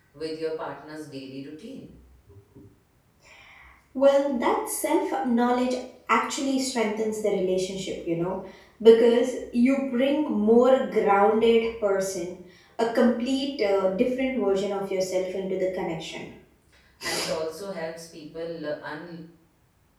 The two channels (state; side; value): identical; both; correlation 1.00